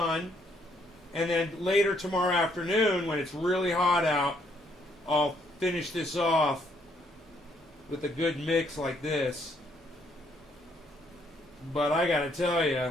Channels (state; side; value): normal; both; correlation 0.69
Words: And then later tomorrow afternoon, when it's really hot out, I'll finish this off with a good mix like this. But I gotta tell you,